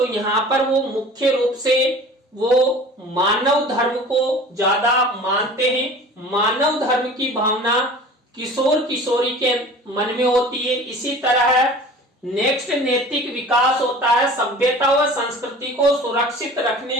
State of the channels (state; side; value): normal; both; correlation 0.42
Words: यहाँ पर वो मुख्य रूप से वो मानव धर्म को ज्यादा मानते हैं। मानव धर्म की भावना किशोर किशोरी के मन में होती है। इसी तरह नेक्स्ट नैतिक विकास होता है सभ्यता व संस्कृति को सुरक्षित रखने